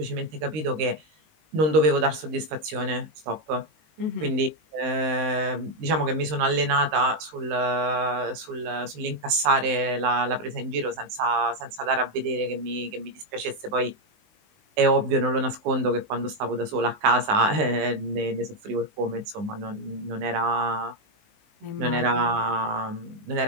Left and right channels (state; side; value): late; left; 19 ms